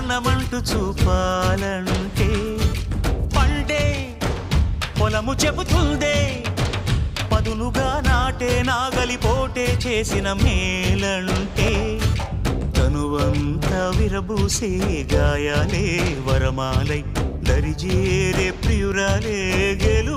చూపాలంటే పండే పొలము చెబుతుందే పదునుగా నాటే నాగలిపోటే చేసిన మేలంటే తనువంతా విరబూసే గాయాలే వరమాలై దరిజేరే ప్రియురాలే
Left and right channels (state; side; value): identical; both; correlation 1.00